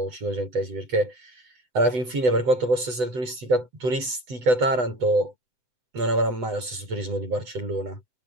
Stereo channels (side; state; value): left; late; 8.1 ms